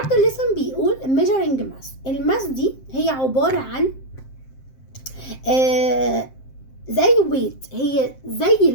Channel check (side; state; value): right; late; 7.6 ms